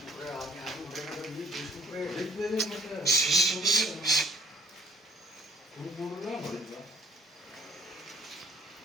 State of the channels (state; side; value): normal; both; correlation 0.57